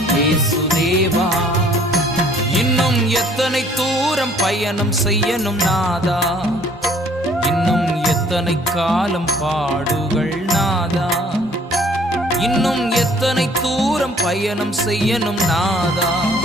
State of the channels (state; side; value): normal; both; correlation 0.58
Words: இயேசு தேவா. இன்னும் எத்தனை தூரம் பயணம் செய்யணும் நாதா, இன்னும் எத்தனை எத்தனை காலம் பாடுகள் நாதா, இன்னும் எத்தனை தூரம் பயணம் செய்யணும் நாதா,